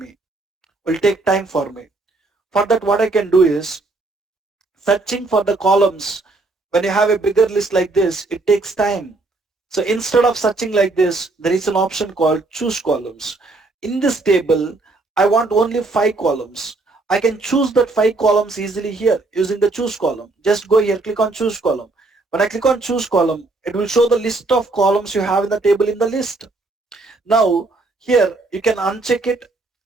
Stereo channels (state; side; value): quieter; left; 3.3 dB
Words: For that, what I can do is searching for the columns. When you have a bigger list like this, it takes time. So instead of searching like this, there is an option called choose columns. In this table, I want only 5 columns. I can choose that 5 columns easily here using the choose column. Just go here, click on choose column. When I click on choose column, it will show the list of columns you have in the table in the list. Now here you can uncheck it